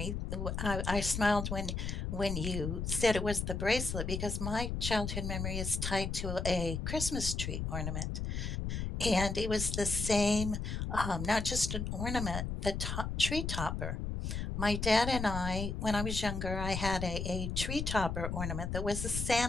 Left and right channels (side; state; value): left; noise; rumble, 3 dB below the sound